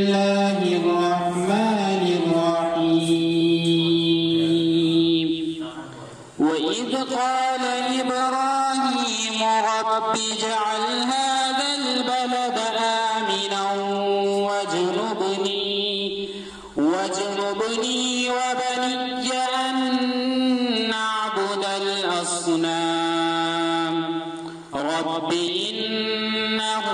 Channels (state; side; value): identical; both; correlation 1.00